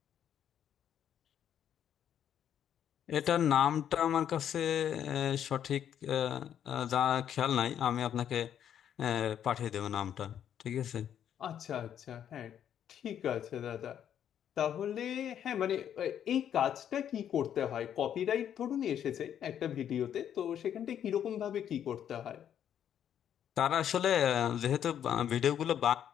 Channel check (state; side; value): quieter; right; 9.6 dB